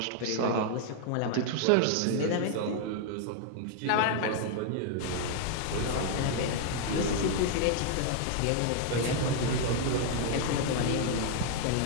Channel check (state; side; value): different; both; correlation 0.00